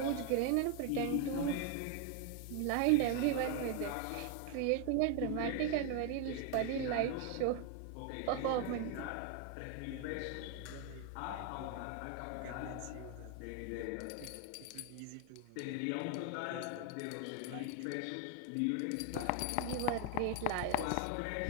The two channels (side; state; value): both; different; correlation 0.01